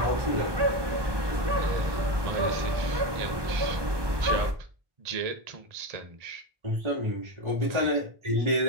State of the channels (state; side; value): late; left; 1.2 ms